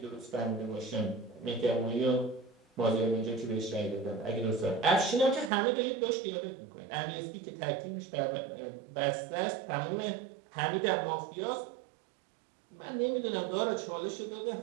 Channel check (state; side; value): drops out; left; at 5.5 s